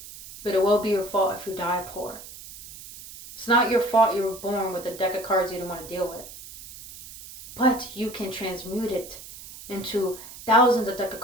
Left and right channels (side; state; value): right; noise; hiss, 15 dB below the sound